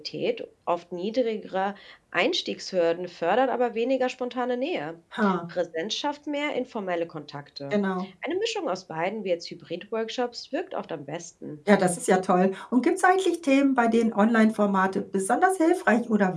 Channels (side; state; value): both; identical; correlation 1.00